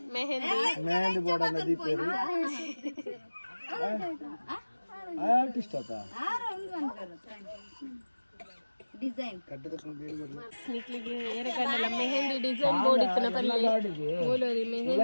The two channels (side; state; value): both; inverted; correlation -1.00